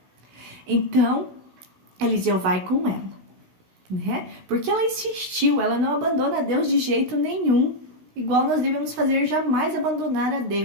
Então, Eliseu vai com ela, né? Porque ela insistiu, ela não abandona Deus de jeito nenhum, igual nós devemos fazer, jamais abandonar a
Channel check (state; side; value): late; left; 16 ms